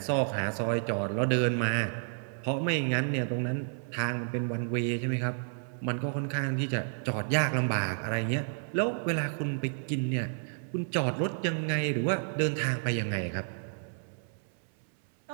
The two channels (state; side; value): silent; left; 57 dB below the other